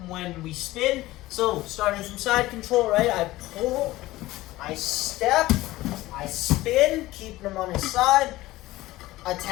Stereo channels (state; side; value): quieter; right; 17.6 dB